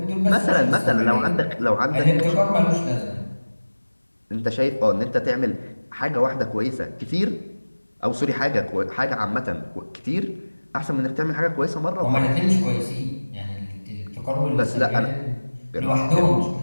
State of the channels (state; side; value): inverted; both; correlation -1.00